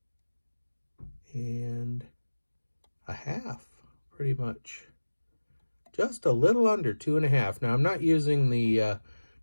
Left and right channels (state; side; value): inverted; both; correlation -1.00